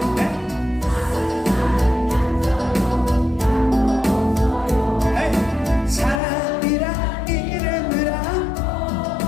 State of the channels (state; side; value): drops out; right; at 6.2 s